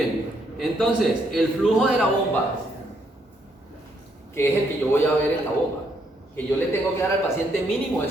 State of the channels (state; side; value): normal; both; correlation 0.73